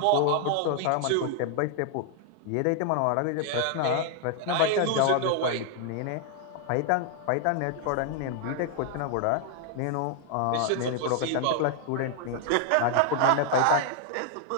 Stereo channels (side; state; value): both; different; correlation 0.00